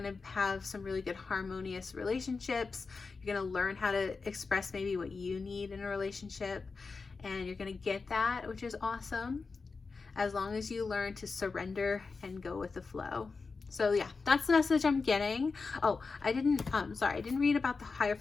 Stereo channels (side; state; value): right; quieter; 4.5 dB